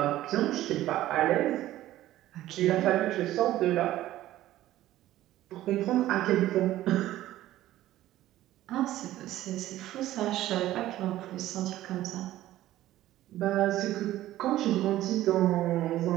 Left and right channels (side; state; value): left; quieter; 14.5 dB